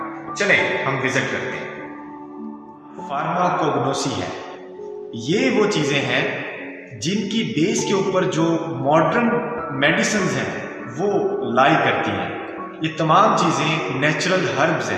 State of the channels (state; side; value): identical; both; correlation 1.00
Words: चलें हम विजिट करते हैं। फार्माकोग्नोसी है, ये वो चीज़ें हैं जिनकी बेस के ऊपर जो मॉडर्न मेडिसिन हैं वो लाई करती हैं। ये तमाम चीज़ें नेचुरल हर्ब्स